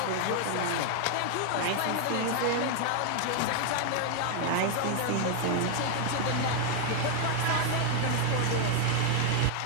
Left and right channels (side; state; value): both; different; correlation 0.00